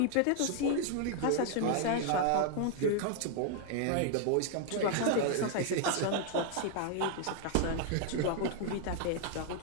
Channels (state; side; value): different; both; correlation 0.00